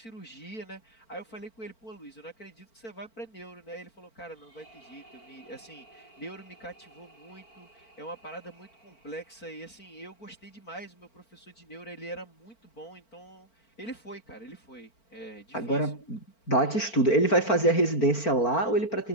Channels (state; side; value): late; right; 4.4 ms